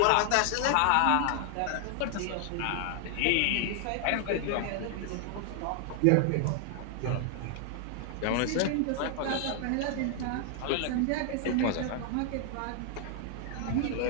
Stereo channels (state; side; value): different; both; correlation 0.00